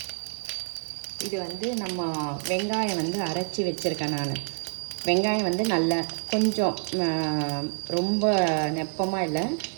இது நம்ம வெங்காயம் அரைச்சி வச்சுருக்கேன். நான் வெங்காயம் நல்லா கொஞ்சம் ரொம்ப நெப்பமாக இல்லை,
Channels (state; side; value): silent; left; digital silence